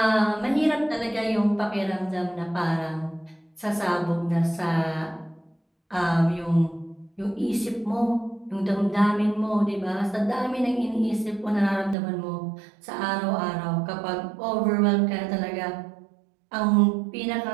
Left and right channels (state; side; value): drops out; left; at 12.0 s